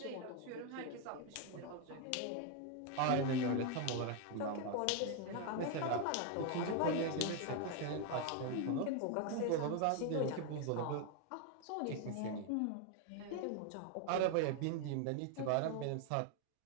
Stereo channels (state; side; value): different; both; correlation 0.01